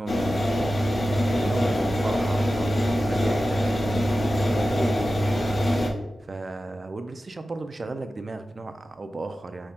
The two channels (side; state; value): both; normal; correlation 0.94